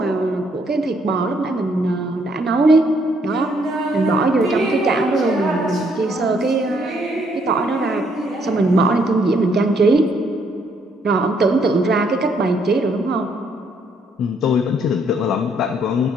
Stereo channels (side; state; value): both; normal; correlation 0.69